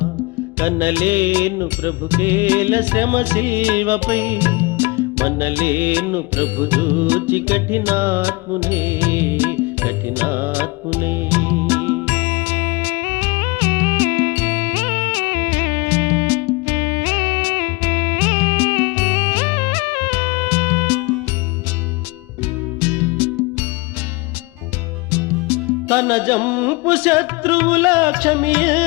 కనలేను ప్రభుకేల శ్రమ శిల్వపై మనలేను ప్రభు చూచి కఠినాత్మునే తన జంపు శత్రువుల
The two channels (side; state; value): right; quieter; 24.9 dB